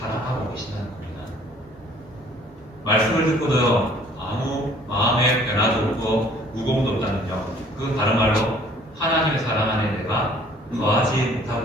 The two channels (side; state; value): both; normal; correlation 0.56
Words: 계신다는 겁니다. 말씀을 듣고도 아무 마음의 변화도 없고 무거움도 없다면요. 그건 다른 말로 하나님의 사랑 안에 내가 거하지